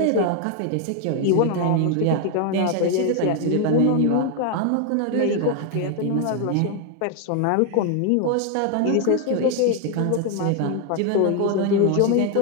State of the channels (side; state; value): both; different; correlation 0.00